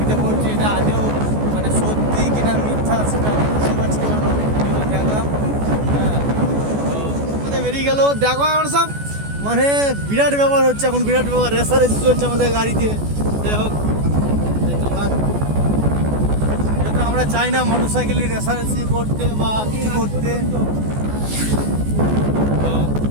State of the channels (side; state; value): left; late; 14 ms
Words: পড়ছে, এটা আদেও মানে সত্যি কিনা মিথ্যা সেটা বুঝতে পারছি না। অনেক ভিডিও দেখলাম। হ্যাঁ, তো আমাদের বেরিয়ে গেল। দেখো আমার সব মানে বিরাট ব্যাপার হচ্ছে এখন, বিরাট ব্যাপার, রেসারেসি চলছে আমাদের গাড়িতে। যাই হোক, যেহেতু আমরা চাই না মোটর সাইকেলে রেসারেসি করতে বা কিছু করতে। তো